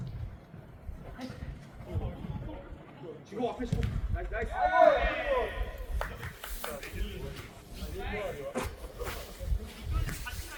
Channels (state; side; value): identical; both; correlation 1.00